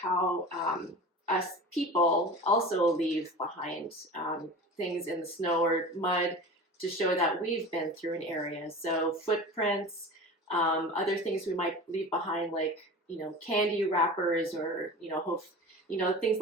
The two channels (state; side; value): normal; both; correlation 0.35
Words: us people also leave behind things in the snow or mud to show that we've been through an area. So footprints, other things we might leave behind, like candy wrappers, or things